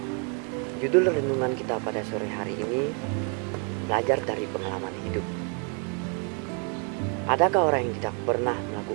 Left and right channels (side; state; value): left; quieter; 38.8 dB